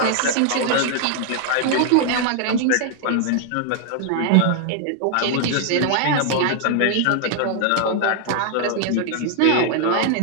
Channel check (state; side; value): different; both; correlation 0.00